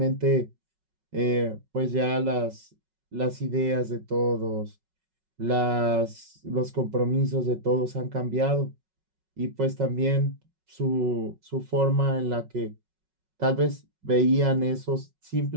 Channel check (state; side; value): late; left; 5.4 ms